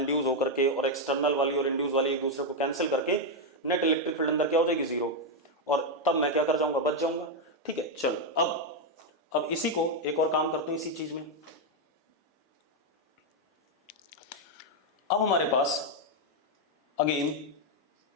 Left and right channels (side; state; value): both; normal; correlation 0.02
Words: होकर के, और एक्सटर्नल वाली और इंड्यूस वाली एक दूसरे को कैंसिल करके नेट इलेक्ट्रिक फील्ड अंदर क्या हो जाएगी? जीरो। और तब मैं क्या कर जाऊंगा? बच जाऊंगा, ठीक है। चलो अब इसी को एक और काम करते हैं इसी चीज में। अब हमारे पास अगेन